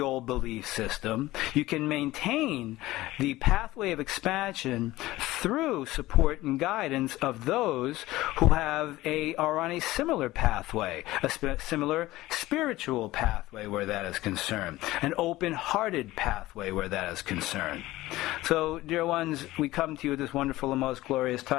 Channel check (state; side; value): quieter; right; 17.5 dB